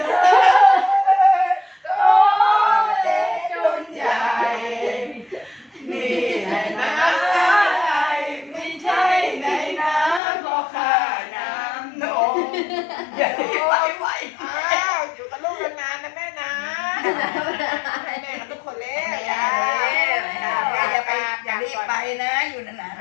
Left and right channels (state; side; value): drops out; right; at 10.2 s